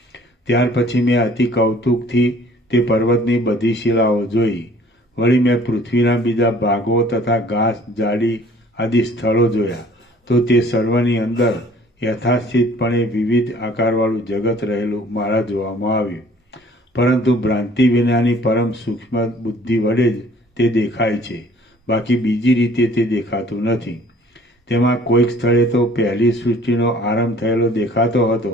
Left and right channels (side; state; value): both; normal; correlation 0.53